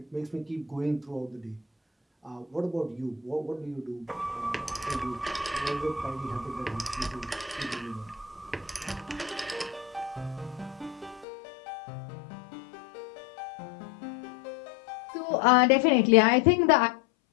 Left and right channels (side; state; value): right; drops out; at 11.2 s